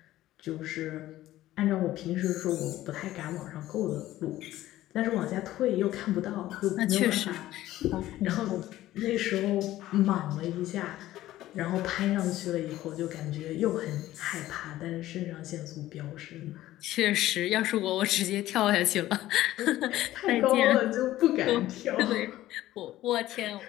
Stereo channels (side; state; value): right; quieter; 14.9 dB